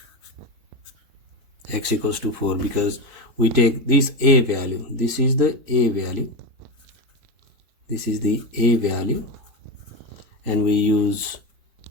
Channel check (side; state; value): left; late; 4.3 ms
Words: X equals to 4 because we take this a value, this is the a value, this is the a value, and we use